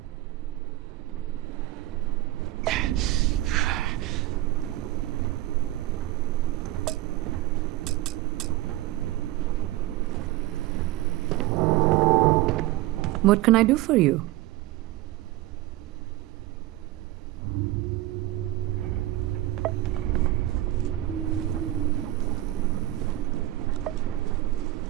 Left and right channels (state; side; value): quieter; left; 16.4 dB